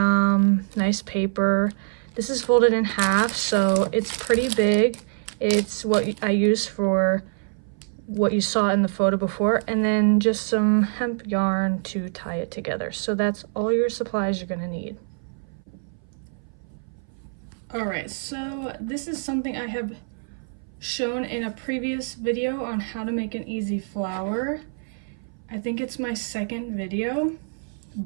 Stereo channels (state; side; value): silent; left; 58 dB below the other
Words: nice paper. This is folded in half, so it's pretty big. It's what I use for what you saw in the photo before, and then just some hemp yarn to tie it together. So that's all your supplies you're gonna need. Alright, so this is something I have shown in a previous video on how to make an easy flower. I think it's my second video,